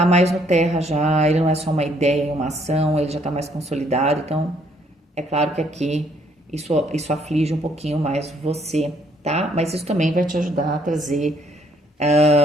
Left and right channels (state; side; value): normal; both; correlation 0.67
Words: mais no terra já, ele não é só uma ideia, uma ação, ele já está mais consolidado. Então, é claro que aqui isso aflige um pouquinho mais você, tá? Mas isso também vai te ajudar a trazer